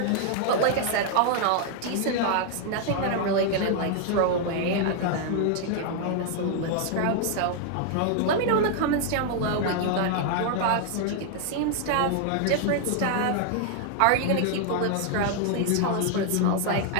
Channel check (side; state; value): both; different; correlation 0.00